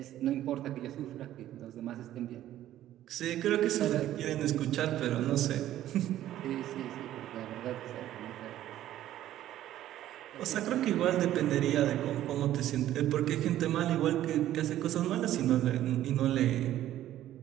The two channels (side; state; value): left; quieter; 12.9 dB